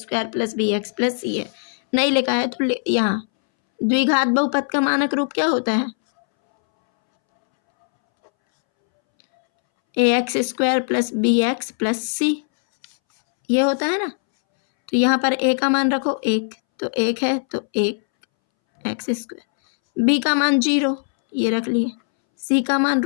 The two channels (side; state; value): right; silent; 64 dB below the other